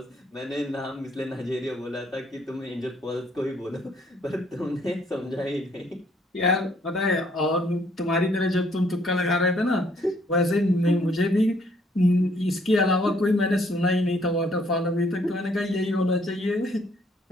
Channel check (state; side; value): normal; both; correlation 0.65